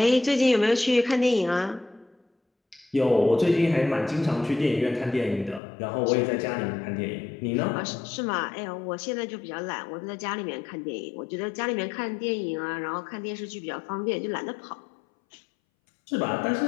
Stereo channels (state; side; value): drops out; right; at 5.6 s